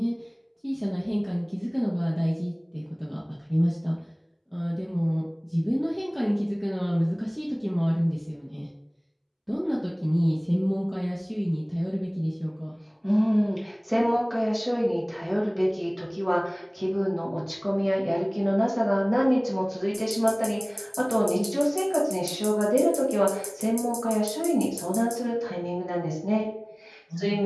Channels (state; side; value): identical; both; correlation 1.00